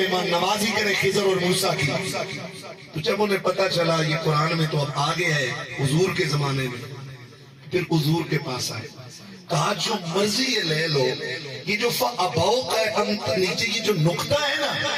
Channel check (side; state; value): both; identical; correlation 1.00